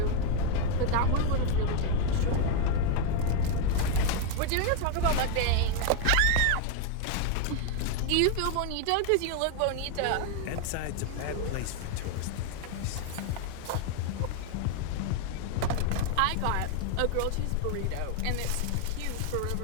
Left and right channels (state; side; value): different; both; correlation 0.01